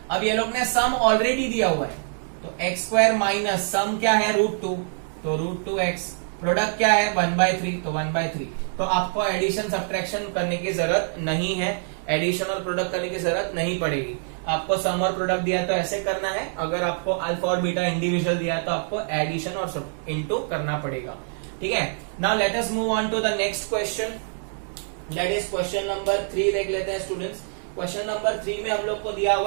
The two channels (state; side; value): silent; left; 62 dB below the other